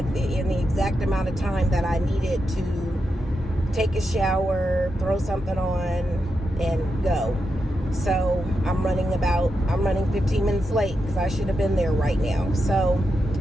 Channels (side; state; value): both; normal; correlation 0.87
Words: the exact amount of time that I needed to take a shower, throw something on, and go. So I'm running 15 minutes late because I should have been there right now. So,